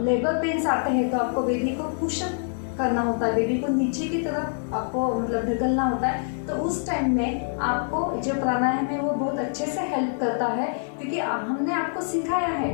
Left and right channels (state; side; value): silent; right; digital silence